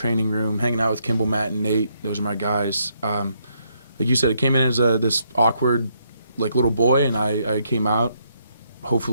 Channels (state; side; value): inverted; both; correlation -0.74